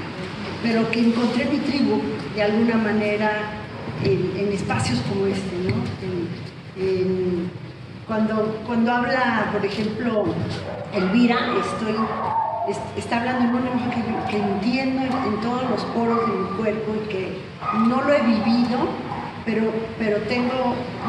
pero que encontré mi tribu de alguna manera en espacios como este, ¿no? Cuando habla, por ejemplo, Elvira, está hablando en un lenguaje que entiendo en todos los poros de mi cuerpo y que no lo he vivido, pero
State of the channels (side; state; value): both; identical; correlation 1.00